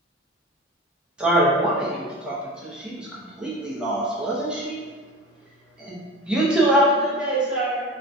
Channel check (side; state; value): both; normal; correlation 0.32